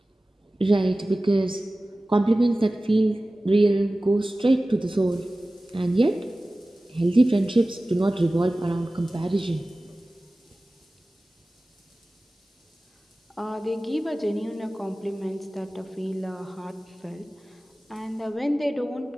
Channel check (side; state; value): both; normal; correlation 0.97